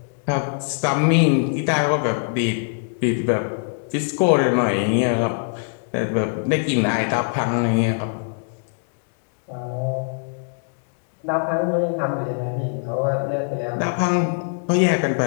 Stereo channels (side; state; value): right; silent; digital silence